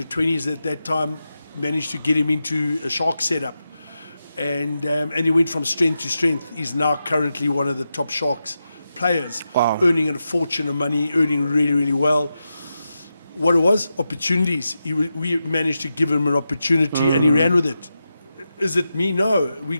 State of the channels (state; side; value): inverted; both; correlation -0.89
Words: 20s at that time, managed to get him into a Shark setup. And he went from strength to strength. He's now currently one of the top Sharks players, earning a fortune of money, earning really, really well. What it was? Opportunities. We managed to give him an opportunity, and he ran with it. Is it me? No. We